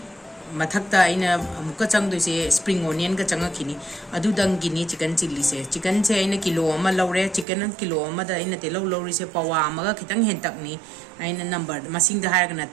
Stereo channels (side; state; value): left; drops out; at 7.5 s